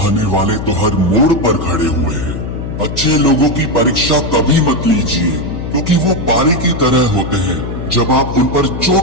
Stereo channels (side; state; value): left; noise; hum, 6 dB below the sound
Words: वाले तो हर मोड़ पर खड़े हुए हैं। अच्छे लोगों की परीक्षा कभी मत लीजिए, क्योंकि वो पारे की तरह होते हैं। जब आप उन पर